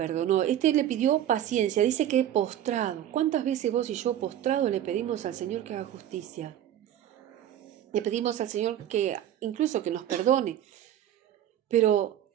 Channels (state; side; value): quieter; left; 11.3 dB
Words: Le pidió paciencia. Dice que postrado. ¿Cuántas veces vos y yo postrado le pedimos al Señor que haga justicia? Le pedimos al Señor que incluso que nos perdone. Pero